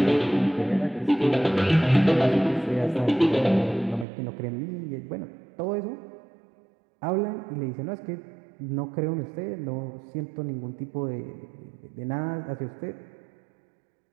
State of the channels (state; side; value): drops out; left; at 4.0 s